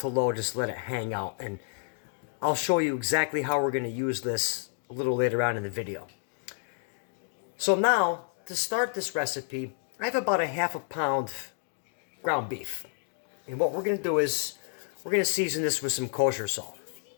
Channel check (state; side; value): silent; right; digital silence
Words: low, just let it hang out. And I'll show you exactly how we're going to use this a little later on in the video. So now, to start this recipe, I have about a half a pound ground beef. And what we're going to do is, we're going to season this with some kosher salt.